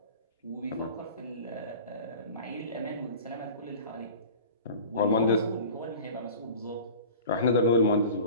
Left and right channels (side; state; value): both; inverted; correlation -0.40